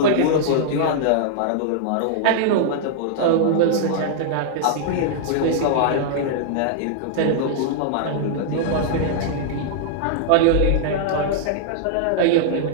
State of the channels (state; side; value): different; both; correlation -0.01